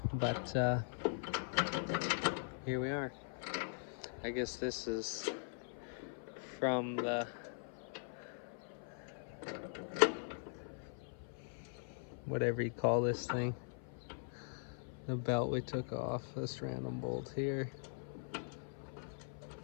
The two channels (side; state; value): right; silent; 50 dB below the other